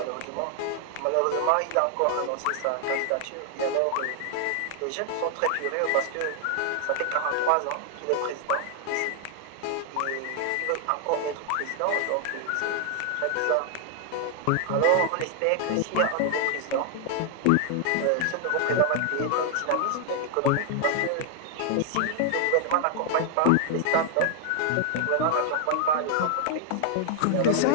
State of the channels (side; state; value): both; different; correlation 0.00